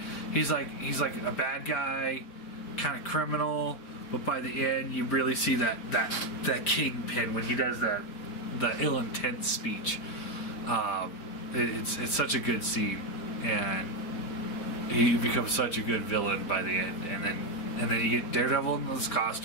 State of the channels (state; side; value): late; right; 5.0 ms